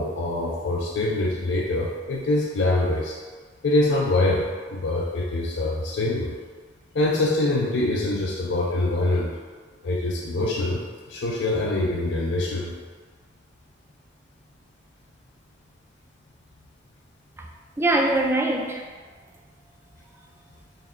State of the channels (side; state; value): both; normal; correlation 0.45